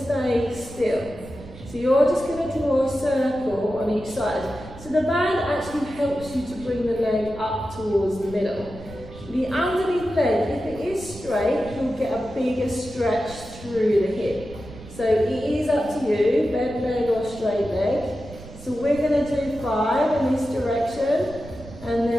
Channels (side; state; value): right; noise; rumble, 16 dB below the sound